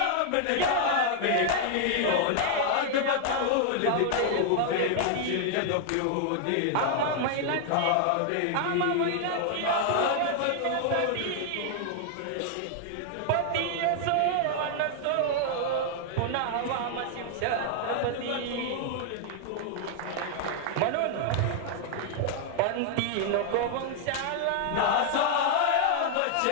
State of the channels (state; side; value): different; both; correlation 0.00